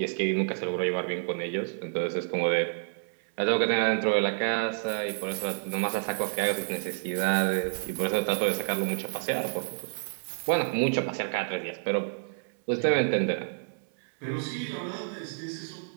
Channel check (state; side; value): silent; left; 59 dB below the other